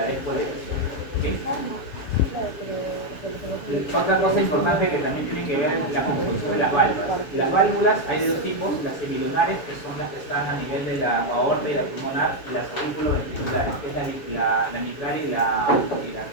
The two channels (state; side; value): late; right; 7.1 ms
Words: despoliarización. ¿Okay? Otra cosa importante que también tiene que ver es la construcción de las válvulas. Las válvulas hay de dos tipos, las semilunares, que son las que están a nivel de la aorta y la pulmonar, y las auriculoventriculares, que es la mitral y la arterial.